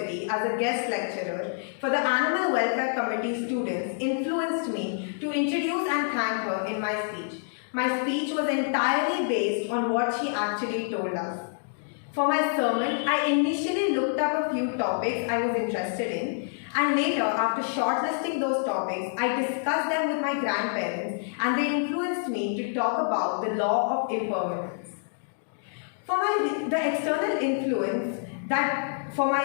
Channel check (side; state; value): right; silent; digital silence